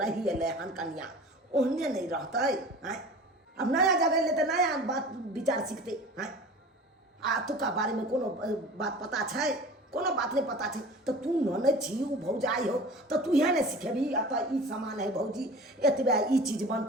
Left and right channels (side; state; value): both; normal; correlation 0.40